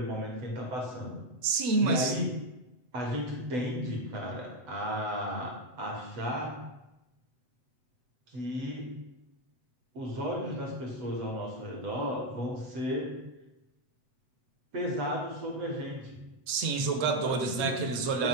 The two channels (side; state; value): left; late; 7.9 ms